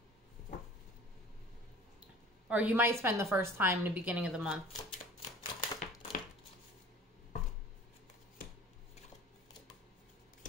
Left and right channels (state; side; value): normal; both; correlation 0.45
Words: Or you might spend the first time in the beginning of the month.